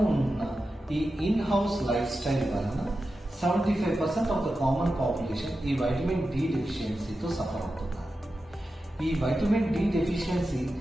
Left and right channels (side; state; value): both; normal; correlation 0.91